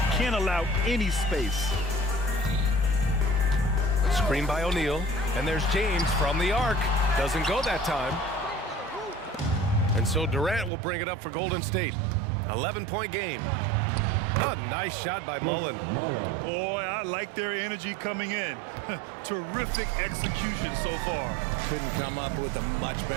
Can't allow any space. Screen by O'Neal. And there's James from the arc. Doesn't go that time. And so Durant will bring it up for Golden State. 11-point game. A nice shot by Mullen. Boy, I like their energy coming in. Terrific execution so far. Couldn't come up with a much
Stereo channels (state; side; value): drops out; left; at 10.7 s